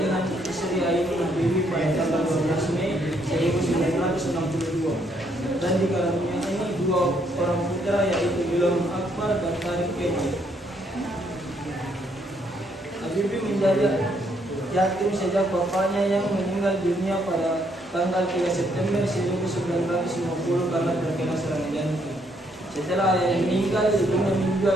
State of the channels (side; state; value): both; normal; correlation 0.71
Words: istri Ainun Habibie pada tanggal 12 Mei 1962 dan dikaruniai 2 orang putra yaitu Ilham Akbar dan Tarik Kemal. Habibie menjadi yatim sejak bapaknya yang meninggal dunia pada tanggal 3 September 1950 karena terkena serangan jantung. Setelah ayahnya meninggal, ibunya